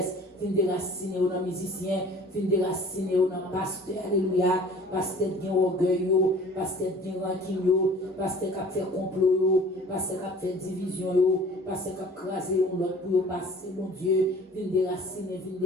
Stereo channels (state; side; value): normal; both; correlation 0.48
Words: vient déraciner dans les musiciens, vient déraciner dans le pasteur, alléluia, pasteur qui a orgueil, pasteur qui a rancune, pasteur qui a fait complot, pasteur qui a fait division, pasteur qui a crasé l'autre pour passer, mon Dieu, vient déraciner,